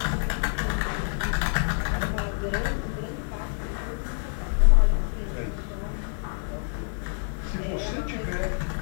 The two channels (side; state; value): right; silent; digital silence